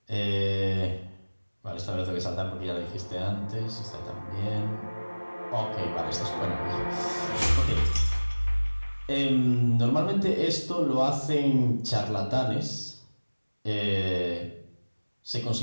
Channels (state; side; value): inverted; both; correlation -1.00